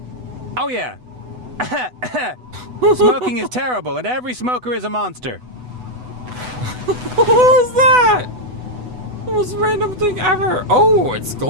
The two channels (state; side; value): late; left; 8.0 ms